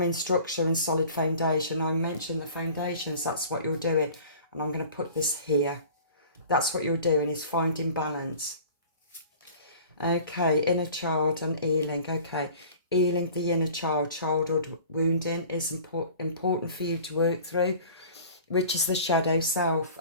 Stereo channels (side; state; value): both; inverted; correlation -0.44